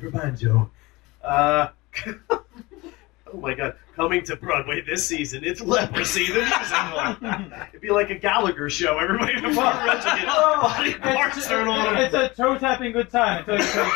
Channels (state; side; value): quieter; right; 22.3 dB